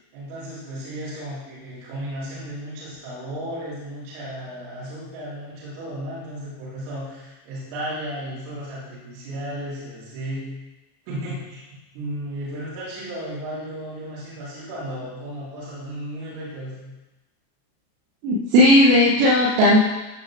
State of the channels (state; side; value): late; left; 37 ms